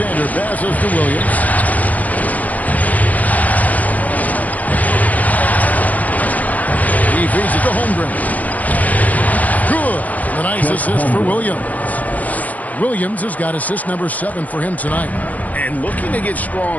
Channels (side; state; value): right; late; 0.076 ms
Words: passes to Williams. He feeds it to Holmgren. Good. A nice assist for Williams. Williams has got assist number 7 for him tonight. And looking to get